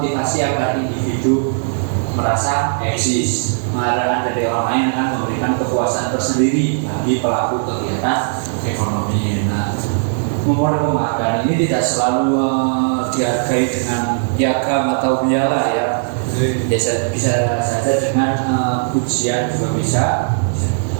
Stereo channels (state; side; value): silent; left; digital silence